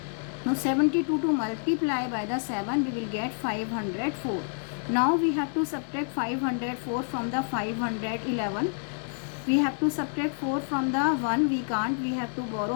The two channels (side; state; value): right; silent; digital silence